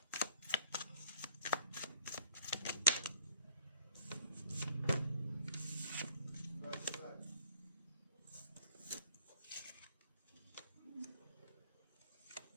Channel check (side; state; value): both; inverted; correlation -0.55